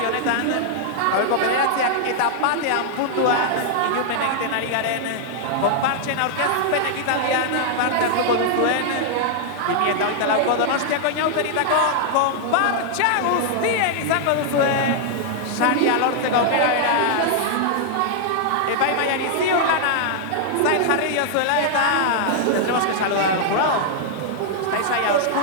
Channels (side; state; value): both; different; correlation -0.01